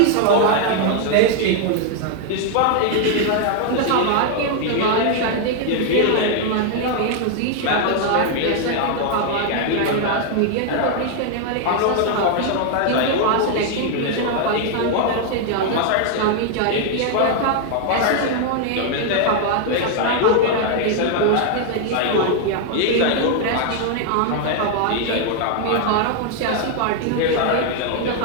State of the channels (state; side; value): different; both; correlation 0.00